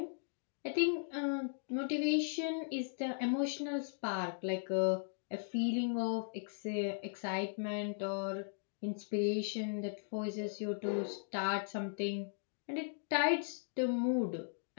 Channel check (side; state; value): right; silent; digital silence